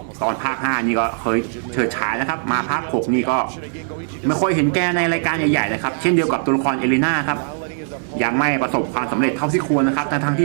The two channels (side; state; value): left; silent; 66 dB below the other